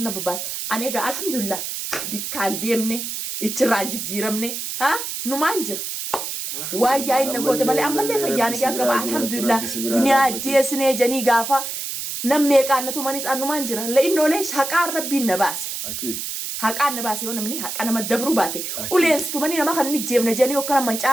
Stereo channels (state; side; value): noise; right; hiss, 5 dB below the sound